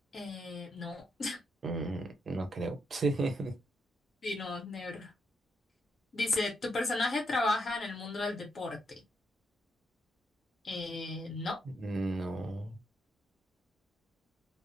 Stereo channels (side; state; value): both; normal; correlation 0.80